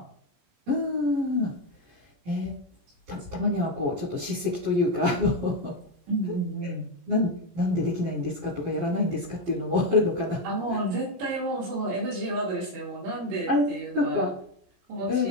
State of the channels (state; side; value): late; left; 17 ms